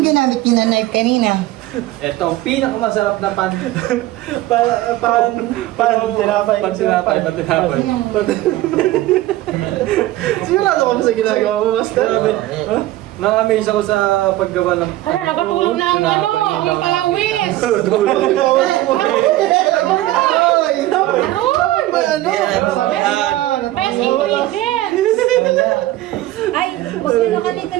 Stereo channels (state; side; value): quieter; left; 16.0 dB